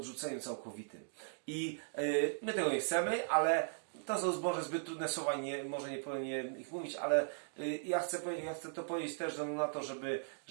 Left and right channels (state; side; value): silent; left; digital silence